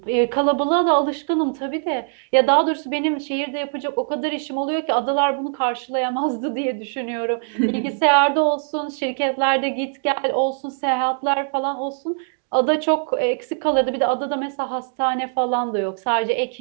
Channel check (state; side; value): silent; left; digital silence